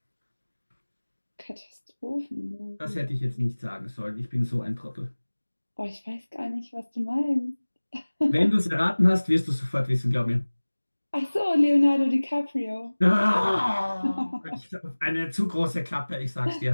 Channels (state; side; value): inverted; both; correlation -1.00